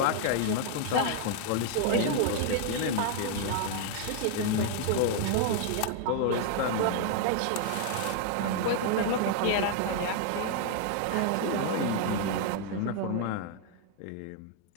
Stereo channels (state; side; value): different; both; correlation 0.00